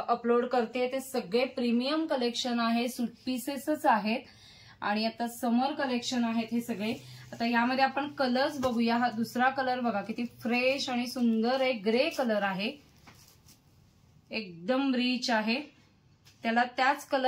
अपलोड करते ते सगळे प्रीमियम कलेक्शन आहे, सूट पीसेसच आहेत आणि आता समर कलेक्शन आहेत हे सगळे। आता यामध्ये आपण कलर्स बघूया। हा दुसरा कलर बघा किती फ्रेश आणि सुंदर आहे, ग्रे कलर आहे, एकदम रिच आहे। त्याला त्याच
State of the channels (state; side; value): identical; both; correlation 1.00